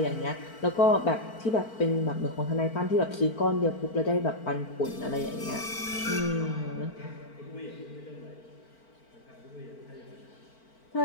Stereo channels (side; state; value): right; late; 4.5 ms